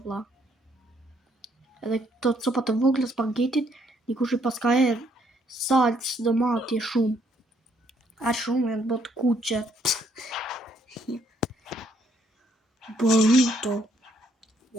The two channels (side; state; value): both; normal; correlation 0.69